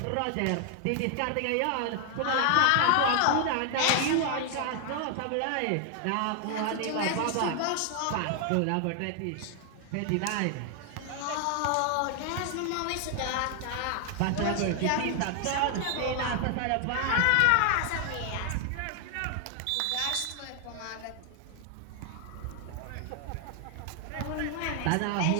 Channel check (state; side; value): different; both; correlation 0.00